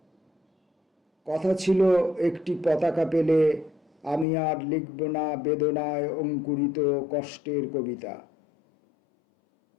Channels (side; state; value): right; drops out; at 4.2 s